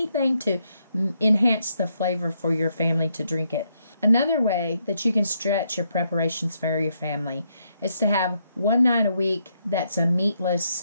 to enhance the flavor for your family to drink it. Another way that you can stretch your preparations for your family is to have one night a week that's a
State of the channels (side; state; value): both; inverted; correlation -0.77